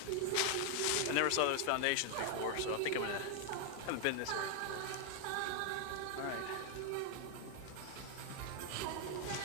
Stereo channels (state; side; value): different; both; correlation 0.00